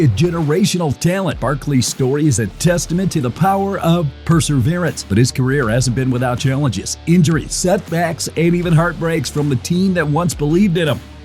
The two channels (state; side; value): identical; both; correlation 1.00